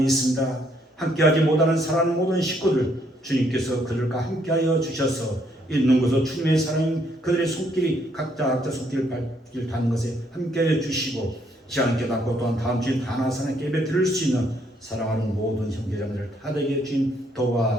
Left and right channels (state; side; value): normal; both; correlation 0.70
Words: 있습니다. 함께하지 못하는 사랑하는 모든 식구들 주님께서 그들과 함께하여 주셔서 있는 곳에서 주님의 사랑이 그들의 손길이 각자 손길을 닿는 것에 함께하여 주시고 시간 깨닫고 또한 다음 주에 다나사나 예배 드릴 수 있는 사랑하는 모든 형제자매들 다되게 주님